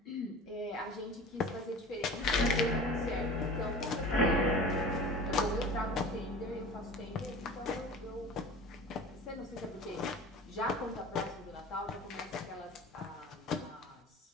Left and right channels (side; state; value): both; normal; correlation 0.38